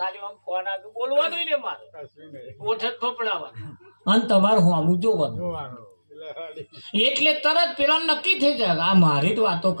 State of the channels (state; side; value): inverted; both; correlation -1.00